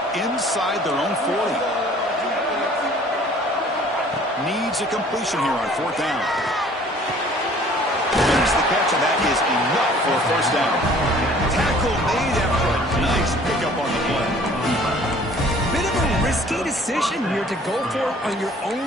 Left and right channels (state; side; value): normal; both; correlation 0.53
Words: inside their own 40. Needs a completion here on 4th down. There's the catch, and that is enough for a 1st down. Tackle made after a nice pickup on the play. Bit of a risky decision here to go for it on your